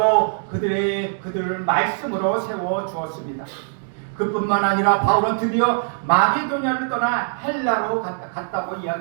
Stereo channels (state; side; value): silent; left; digital silence